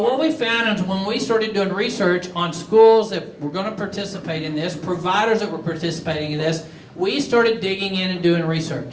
we found is when we started doing research on schools that were going to participate in this, providers that were participating in this, we started digging in and doing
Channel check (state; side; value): identical; both; correlation 1.00